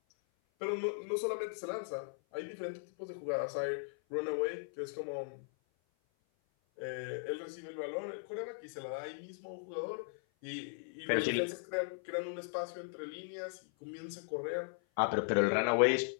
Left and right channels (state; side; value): silent; right; 53 dB below the other